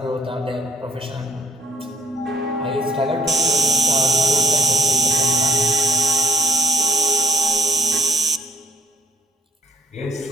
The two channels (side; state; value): both; normal; correlation 0.61